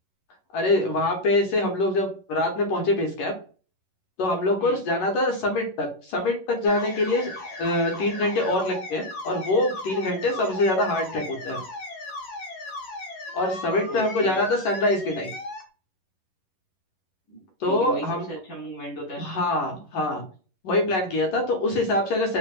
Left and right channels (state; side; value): late; right; 11 ms